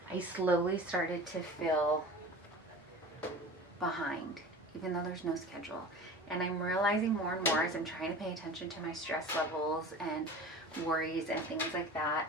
I slowly started to feel behind, even though there's no schedule. And I'm realizing more and more as I'm trying to pay attention to my stress levels and worries and things like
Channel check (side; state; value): both; normal; correlation 0.37